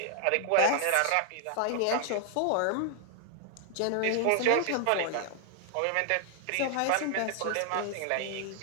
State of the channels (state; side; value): different; both; correlation 0.00